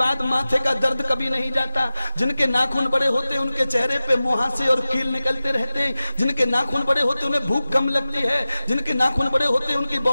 माथे का दर्द कभी नहीं जाता। जिनके नाखून बड़े होते हैं उनके चेहरे पे मुहासे और कील निकलते रहते हैं। जिनके नाखून बड़े होते हैं उन्हें भूख कम लगती है। जिनके नाखून बड़े होते हैं उनकी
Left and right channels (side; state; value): both; inverted; correlation -0.96